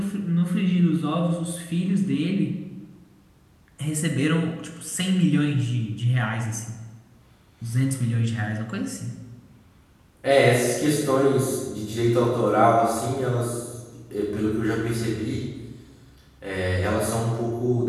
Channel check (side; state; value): both; identical; correlation 1.00